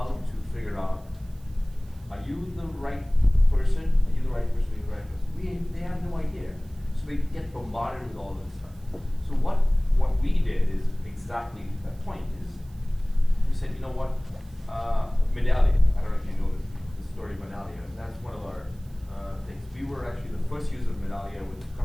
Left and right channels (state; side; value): noise; right; hiss, 29 dB below the sound